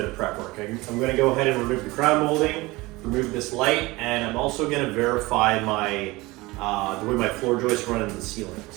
of prep work. I'm going to go ahead and remove the crown molding, remove this light, and I'm also going to verify my the way my floor joists run in the ceiling.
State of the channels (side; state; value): left; quieter; 21.6 dB